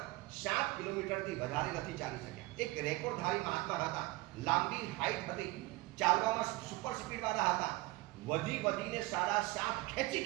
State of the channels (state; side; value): quieter; left; 20.9 dB